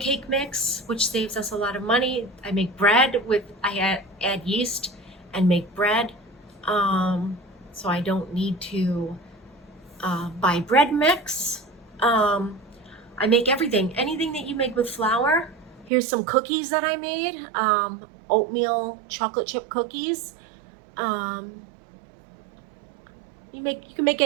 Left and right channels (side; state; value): left; drops out; at 15.9 s